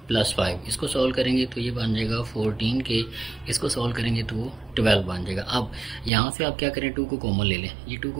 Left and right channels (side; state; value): left; drops out; at 6.1 s